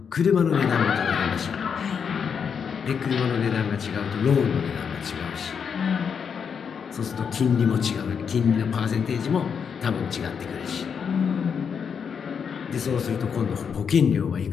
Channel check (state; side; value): quieter; right; 6.8 dB